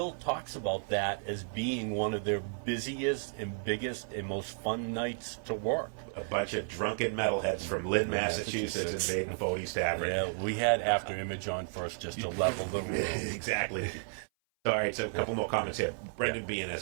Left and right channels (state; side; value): silent; left; 56 dB below the other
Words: talks about that as being one of their busiest and biggest and most fun nights to work. A bunch of drunken metalheads from Lynn, Massachusetts invading Fody's Tavern. Yeah, we had After Image on first just to level the room. Exactly. All right, so a couple more comments here. Brendan Bean, as